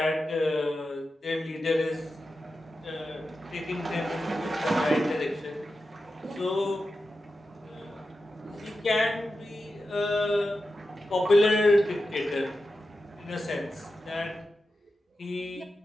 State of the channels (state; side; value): normal; both; correlation 0.91